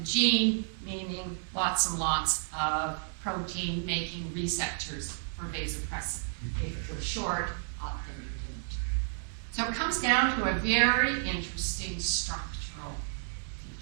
gene, meaning lots and lots of protein-making receptors for vasopressin. If it was short, then you didn't. So it comes down to a very interesting structural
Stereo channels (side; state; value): left; silent; 57 dB below the other